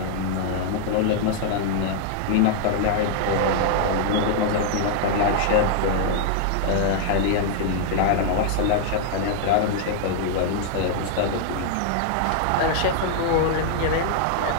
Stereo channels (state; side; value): different; both; correlation -0.01